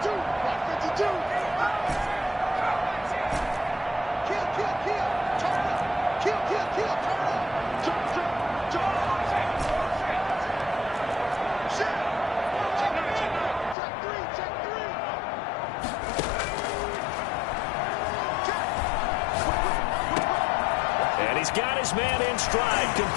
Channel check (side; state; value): right; drops out; at 13.8 s